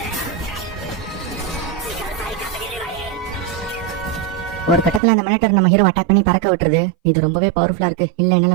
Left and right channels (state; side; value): drops out; left; at 5.0 s